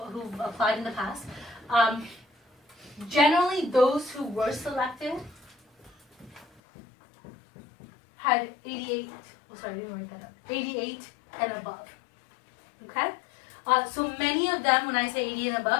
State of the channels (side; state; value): right; drops out; at 6.6 s